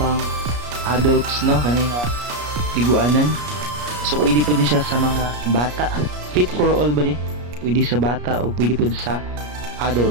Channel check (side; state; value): left; late; 33 ms